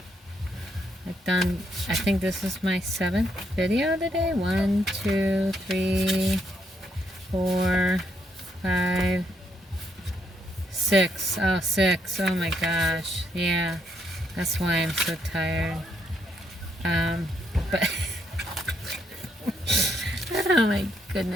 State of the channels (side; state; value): both; normal; correlation 0.76